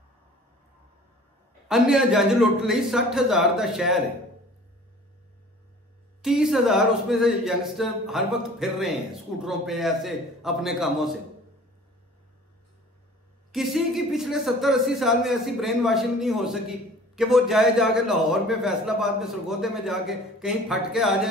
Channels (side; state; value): both; normal; correlation 0.47